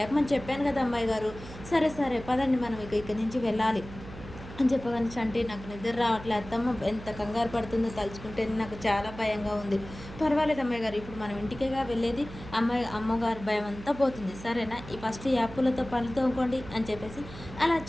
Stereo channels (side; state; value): right; noise; hum, 14 dB below the sound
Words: చెప్పాను కదా అమ్మాయి గారు. సరే సరే పదండి మనం ఇక్కడి నుంచి వెళ్ళాలి అని చెప్పగానే చంటి నాకు నిద్ర రావట్లే అత్తమ్మ ఎంత కంగారు పడుతుందో తలుచుకుంటే నాకు చాలా భయంగా ఉంది. పర్వాలేదు అమ్మాయి గారు ఇప్పుడు మనం ఇంటికేగా వెళ్ళేది అమ్మగారు భయం అంతా పోతుంది సరేనా ఈ ఫస్ట్ యాప్పులతో పనులు తోముకోండి అని చెప్పేసి అలా